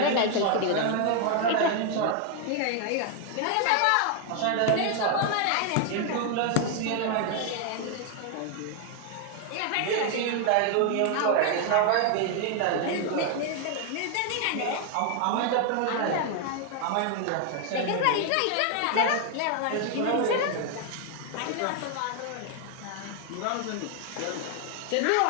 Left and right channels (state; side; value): different; both; correlation 0.00